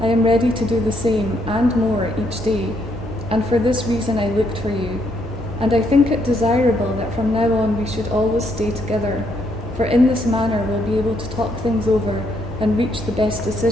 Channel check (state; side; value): normal; both; correlation 0.74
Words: I am ready to do the same and more each day, and for this reason I looked for you. And I think it desirable that from now on we should always stay together, for in this manner we'll be able to talk things over and reach the best